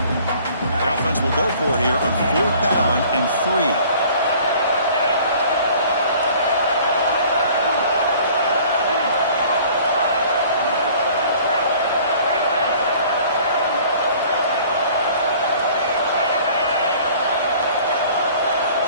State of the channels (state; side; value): inverted; both; correlation -0.51